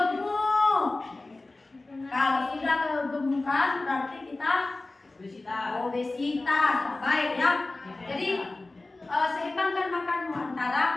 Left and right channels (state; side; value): quieter; right; 3.1 dB